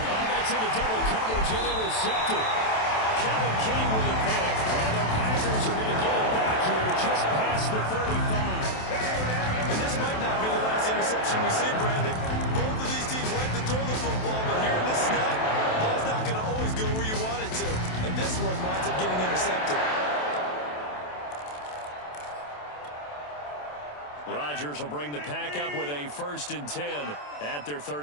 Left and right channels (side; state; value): right; late; 27 ms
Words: That's in the double coverage and intercepted. Kevin King with a pick. And the Packers are going to get it back here just past the 35. And this might not be the last interception we see, Brandon. Both of these teams like to throw the football, but here in this snap, the ball's not going to always go where you want it to. And this one winds up getting intercepted. Rodgers will bring the pack up with a 1st and 10 at their